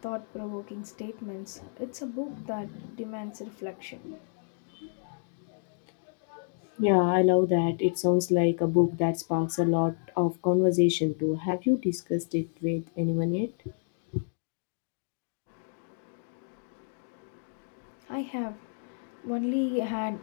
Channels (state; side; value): silent; right; digital silence